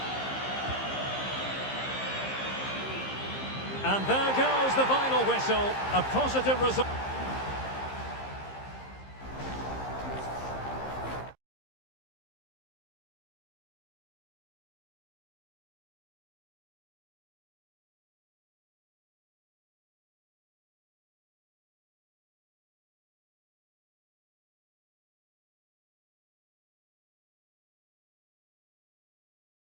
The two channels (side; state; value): right; late; 15 ms